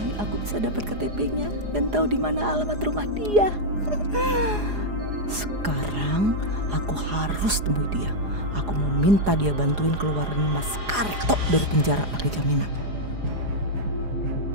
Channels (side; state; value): left; late; 4.9 ms